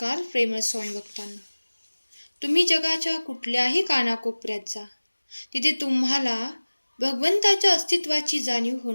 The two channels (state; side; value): inverted; both; correlation -1.00